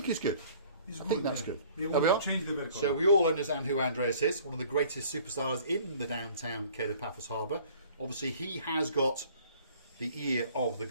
is good. It's I good, think that's yeah. good. They There want we to are. change the pergola. So we all understand who Andreas is, one of the greatest superstars in the downtown Cape of Paphos Harbour. Obviously, he has got the ear of the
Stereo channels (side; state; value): both; inverted; correlation -0.53